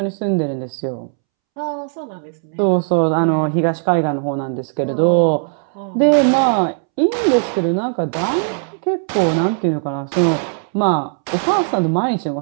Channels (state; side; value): silent; left; 67 dB below the other